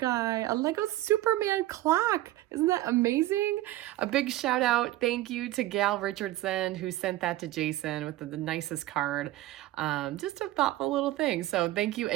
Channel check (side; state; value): left; quieter; 16.0 dB